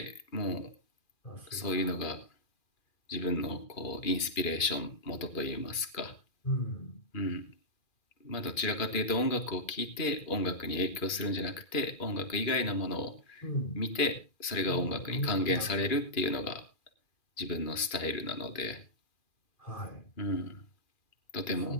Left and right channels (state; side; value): late; right; 2.4 ms